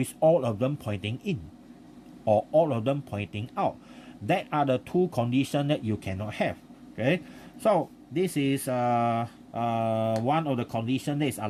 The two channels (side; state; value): both; identical; correlation 1.00